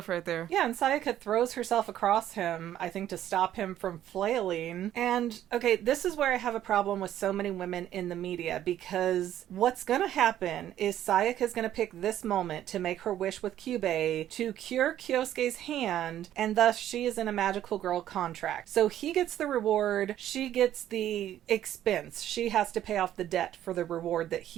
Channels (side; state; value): left; quieter; 11.8 dB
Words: right there. Yeah, and Sayaka throws herself across him, I think to stop him from flailing. And, okay, this is where I have a problem with so many women in the media, because what's gonna happen is Sayaka's gonna pick this moment to make her wish with Kyubei to cure Kyosuke's hand, and thus she is in a magical girl contract. So he gets the reward, she gets the expense. She has to pay off the debt for the reward that